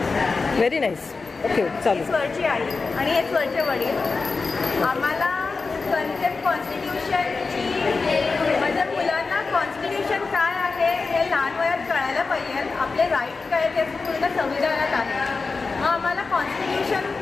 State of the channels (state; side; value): quieter; right; 4.2 dB